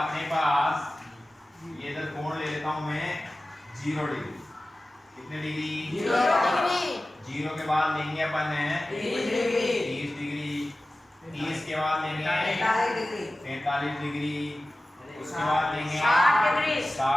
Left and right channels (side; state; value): both; normal; correlation 0.96